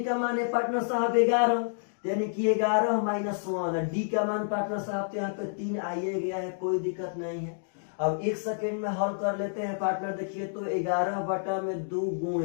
का मान है पार्टनर साहब 11, यानी कि 11 -1। डी का मान पार्टनर साहब तो यहाँ पे 3 आइए गया है, कोई दिक्कत नहीं है। अब 1 सेकेंड में हल कर लेते हैं पार्टनर। देखिए तो 11/2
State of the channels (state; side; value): silent; right; digital silence